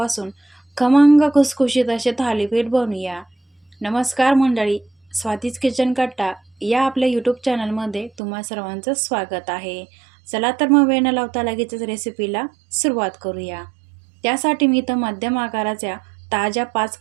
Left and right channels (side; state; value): left; drops out; at 8.2 s